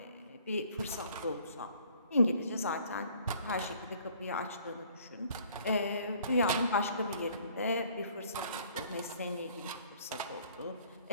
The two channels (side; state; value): both; inverted; correlation -0.57